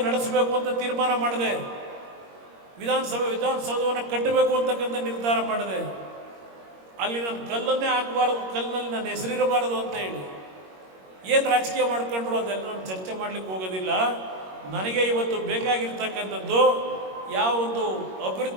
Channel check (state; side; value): late; left; 21 ms